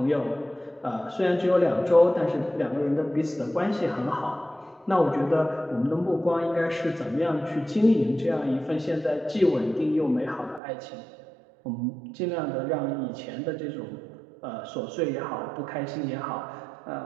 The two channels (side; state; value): left; drops out; at 10.6 s